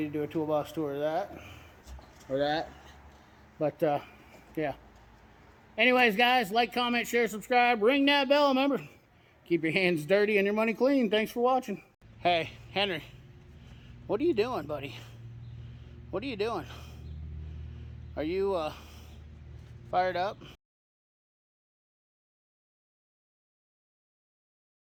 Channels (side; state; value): both; identical; correlation 1.00